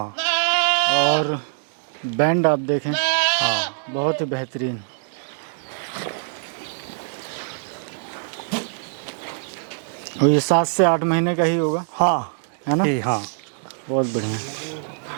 और बैंड आप देखें, हाँ बहुत ही बेहतरीन। और ये 7 से 8 महीने का ही होगा, हाँ है ना? हाँ बहुत बढ़िया।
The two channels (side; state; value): left; silent; digital silence